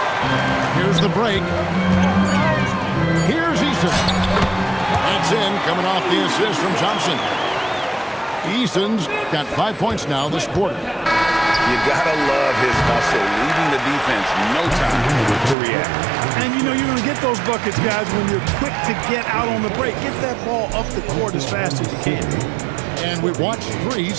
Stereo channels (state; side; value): drops out; left; at 15.6 s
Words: Here's the break. Here's Eason. That's in, coming off the assist from Thompson. Eason's got 5 points now this quarter. You gotta love his hustle, leading the defense, no time to react. And you know you're gonna get those buckets, guys, when you're quick to get out on the break. Get that ball up the court as fast as you can. And we've watched 3